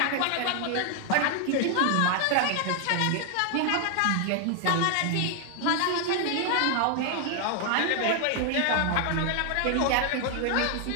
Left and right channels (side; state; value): both; different; correlation 0.00